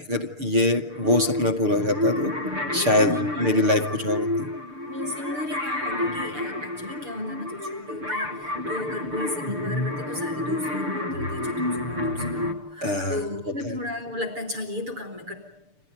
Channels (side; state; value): left; late; 6.8 ms